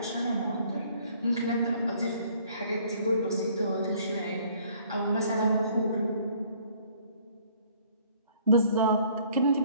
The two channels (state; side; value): inverted; both; correlation -0.59